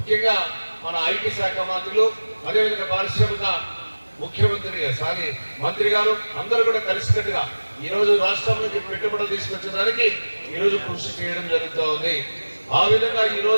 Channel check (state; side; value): inverted; both; correlation -1.00